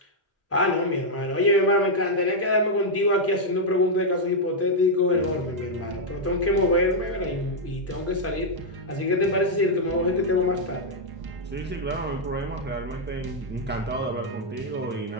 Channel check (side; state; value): both; normal; correlation -0.03